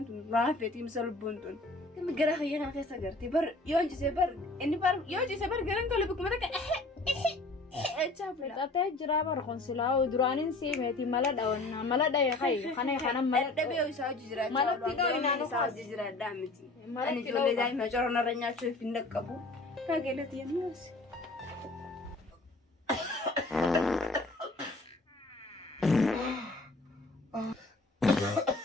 tun raafeetii misa lubbuun tun gami gara hayya kana keessa agartee bar yoo jisee bar inni bar yoo jisee bar garan tole bikkuma takka chaafila. Qatee jiraa bar konsilaa duraaniin siimeeti mala dhawannaa mala dhayee hayi kana kana mala dhabee isaa hojii jiraachaa malatti dhooyinaan isaa hojii jiraadhaa miti ani ijoollee daa'ima corona irra nyaachuuf hin dhaqqabu. Kageelati yennuus.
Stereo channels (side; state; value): right; quieter; 3.0 dB